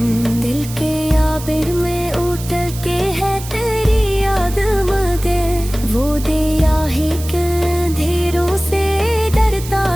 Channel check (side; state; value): right; noise; hiss, 13 dB below the sound